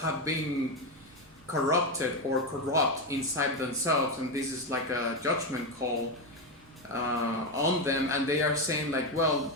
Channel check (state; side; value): normal; both; correlation 0.11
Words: been corrupted or corrupt inside themselves, and this is like a judgment call on them, and they are saying like, well,